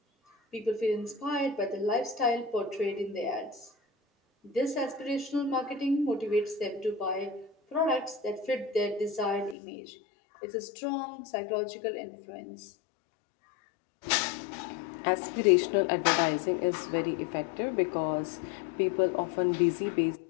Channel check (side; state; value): right; drops out; at 9.6 s